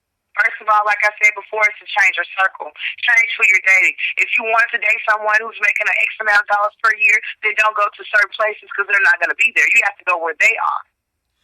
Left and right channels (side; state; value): both; identical; correlation 1.00